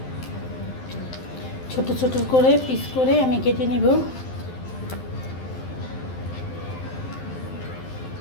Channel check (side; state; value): right; late; 12 ms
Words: ছোট ছোট করে পিস করে আমি কেটে নিব।